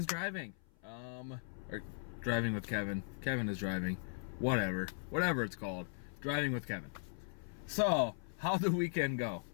Driving. Or Driving with Kevin. Kevin is driving. Whatever it's called. Driving with Kevin. So, how'd the weekend go?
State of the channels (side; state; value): right; silent; 52 dB below the other